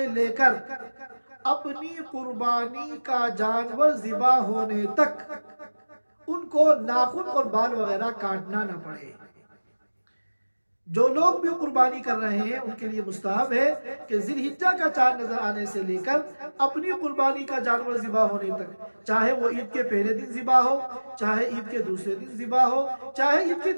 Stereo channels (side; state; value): both; inverted; correlation -1.00